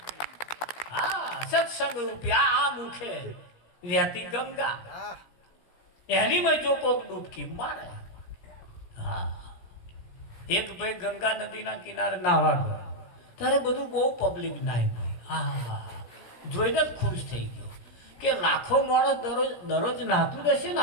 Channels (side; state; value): right; late; 17 ms